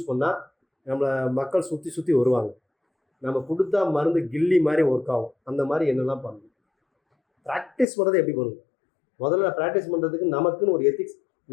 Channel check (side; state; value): right; drops out; at 7.9 s